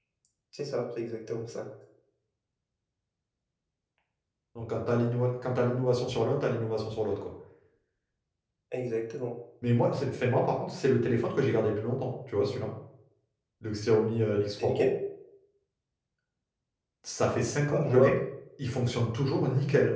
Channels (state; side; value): identical; both; correlation 1.00